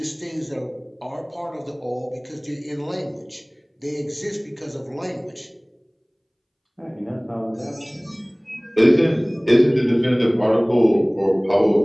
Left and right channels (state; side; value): identical; both; correlation 1.00